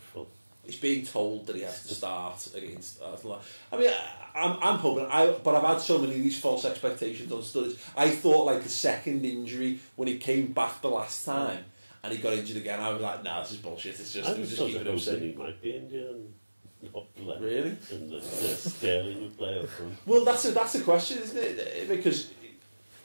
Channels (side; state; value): both; inverted; correlation -1.00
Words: He's being told that he has to start against Arsenal. I mean, I'm hoping. But I've had so many of these false expectations on Sturridge. I thought like the second injury when he came back the last time and he got injured again. I was like, nah, this is bullshit. It was just keeping him safe. He might be injured and not play. Really? And the Sterling would play up front. Well, that's a question, isn't it? Because